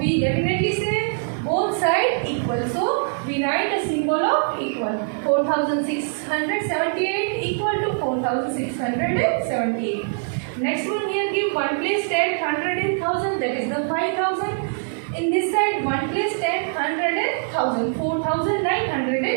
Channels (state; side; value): silent; left; 63 dB below the other